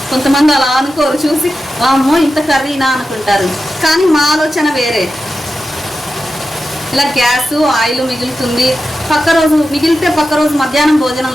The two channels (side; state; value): both; normal; correlation 0.91